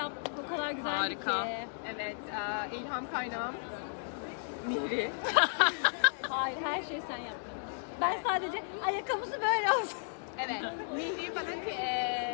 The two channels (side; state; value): right; silent; digital silence